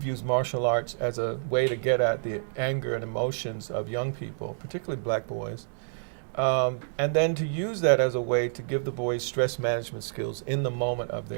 used martial arts as a way to get at the anger and emotions of young people, particularly black boys. And then to use that as a way to give the boys stress management skills in the moment of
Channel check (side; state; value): left; silent; 59 dB below the other